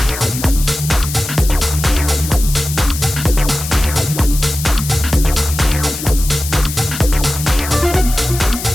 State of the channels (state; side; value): noise; left; hiss, 8 dB below the sound